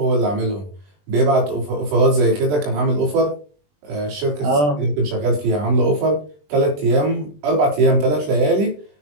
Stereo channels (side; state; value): left; late; 20 ms